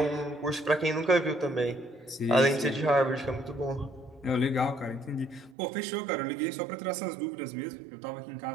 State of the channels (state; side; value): drops out; left; at 5.6 s